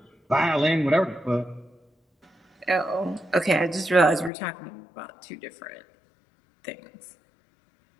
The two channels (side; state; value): right; drops out; at 4.3 s